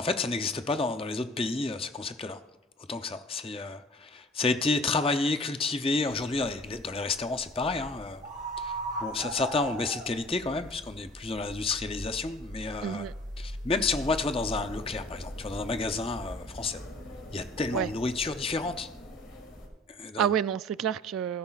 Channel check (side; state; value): both; normal; correlation 0.48